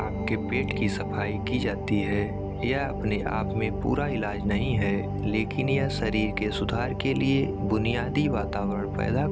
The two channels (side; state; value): both; identical; correlation 1.00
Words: पेट की सफाई की जाती है। यह अपने आप में पूरा इलाज नहीं है, लेकिन यह शरीर के सुधार के लिए बुनियादी वातावरण पैदा